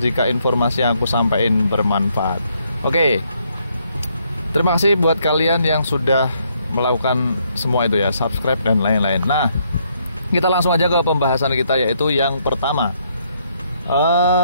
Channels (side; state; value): both; inverted; correlation -0.72